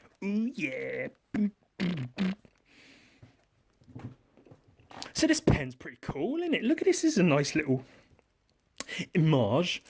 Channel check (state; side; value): identical; both; correlation 1.00